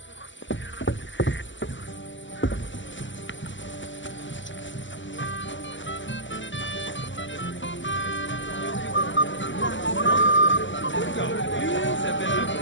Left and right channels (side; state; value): right; late; 0.55 ms